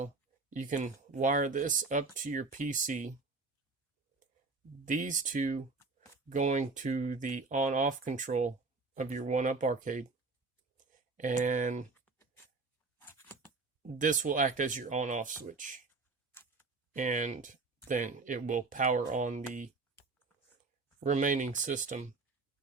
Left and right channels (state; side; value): quieter; left; 3.9 dB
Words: you can wire this up to your PC. These two going to the on-off control of your 1-up arcade. And this will act as your on-off switch. And then it will power on the remaining system.